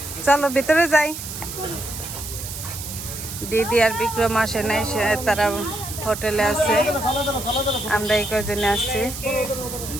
চলো ভিতরে যাই। দিদি আর বিক্রম আসে নাই, তারা হোটেলে আছে। আমরা এই কজনে আসছি।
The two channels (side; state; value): right; noise; hiss, 9 dB below the sound